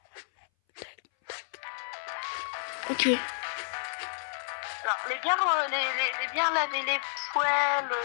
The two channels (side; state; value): right; silent; 58 dB below the other